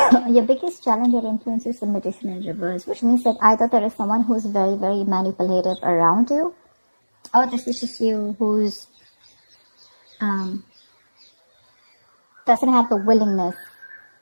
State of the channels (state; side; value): inverted; both; correlation -1.00